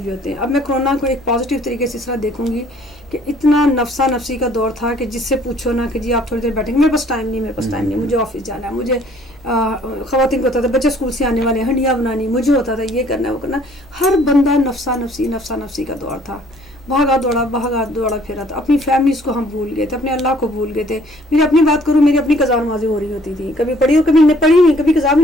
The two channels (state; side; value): normal; both; correlation 0.59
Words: بھی ہوتے ہیں. اب میں کرونا کو ایک پازیٹیو طریقے سے اس طرح دیکھوں گی کہ اتنا نفسا نفسی کا دور تھا کہ جس سے پوچھو نا کہ جی آپ تھوڑی دیر بیٹھیں گے, میرے پاس ٹائم نہیں, مجھے آفس جانا ہے, مجھے خواتین کو ہوتا تھا بچے اسکول سے آنے والے ہیں, ہنڈیاں بنانی, مجھے ہوتا تھا یہ کرنا ہے وہ کرنا. ہر بندہ نفسا نفسی کا دور تھا, بھاگا دوڑا پھرا تھا. اپنی فیملیز کو ہم بھول گئے تھے, اپنے اللہ کو بھول گئے تھے. میری اپنی بات کروں, میری اپنی قضا نمازیں ہو رہی ہوتی تھی, کبھی پڑھی اور کبھی پڑھی نہیں, کبھی قضا بھی